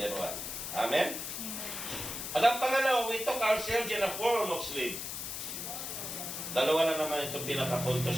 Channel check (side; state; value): left; noise; hiss, 5 dB below the sound